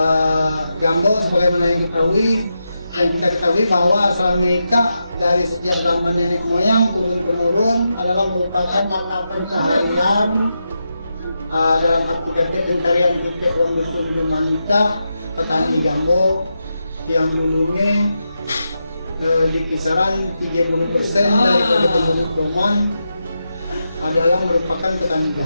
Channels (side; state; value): both; inverted; correlation -0.87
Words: gambo sebagaimana yang kita ketahui bahwa selama dari sejak zaman nenek moyang turun temurun adalah merupakan mata pencaharian dalam arti kata pencarian kita orang dusun wanita petani gambo yang dulunya di kisaran 30% daripada penduduk Toman adalah merupakan petani